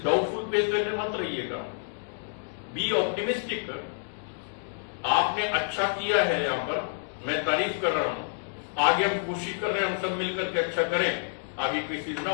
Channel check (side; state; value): right; silent; digital silence